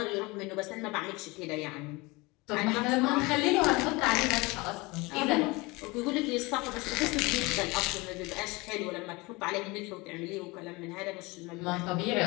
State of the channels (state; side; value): quieter; right; 24.2 dB